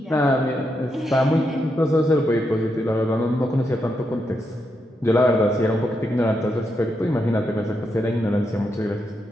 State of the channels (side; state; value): both; normal; correlation 0.83